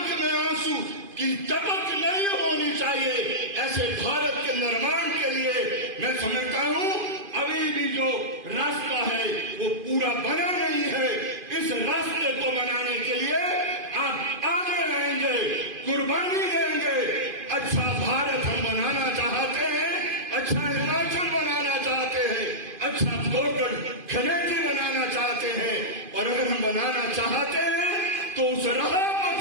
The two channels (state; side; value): late; left; 2.5 ms